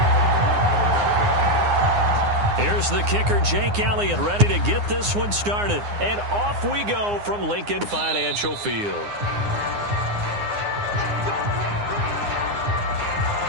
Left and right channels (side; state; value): left; late; 9.7 ms